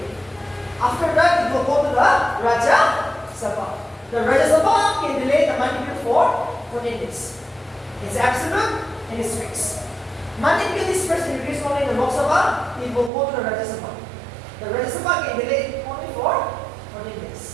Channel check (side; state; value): left; drops out; at 13.1 s